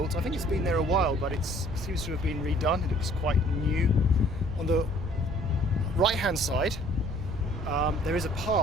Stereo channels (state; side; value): noise; right; rumble, 9 dB below the sound